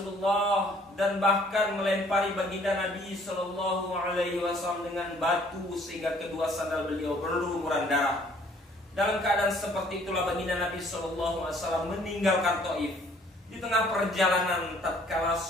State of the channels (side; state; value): both; normal; correlation 0.59